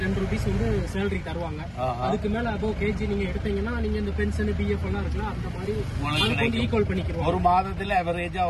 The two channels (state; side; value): identical; both; correlation 1.00